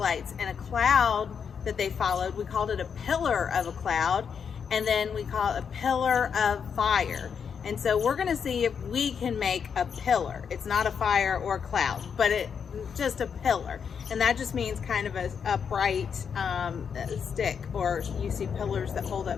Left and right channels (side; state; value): right; quieter; 6.8 dB